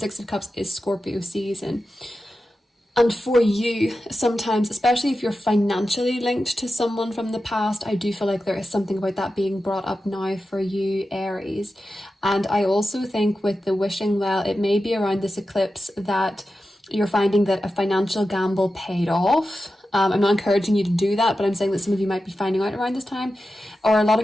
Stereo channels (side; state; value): both; normal; correlation 0.92